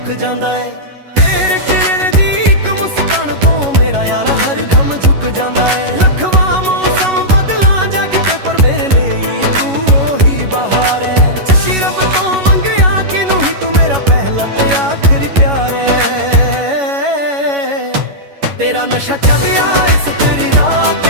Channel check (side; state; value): left; late; 11 ms